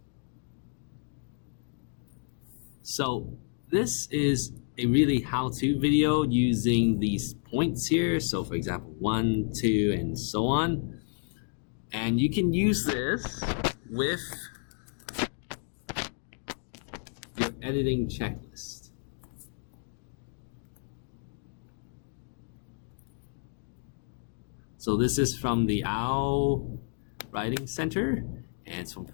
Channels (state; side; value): silent; right; 57 dB below the other